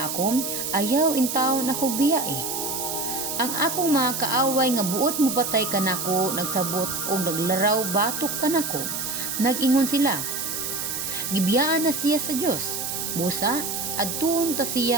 ako, ayaw in taon ako biyae. Ang akong mga kaaway nga buot mo patay kanako, nagsabot og naglaraw batok kanako. Nag-ingon sila, gibiyaan na siya sa Dios. Busa, adtuon ta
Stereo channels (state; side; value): noise; right; hiss, 3 dB below the sound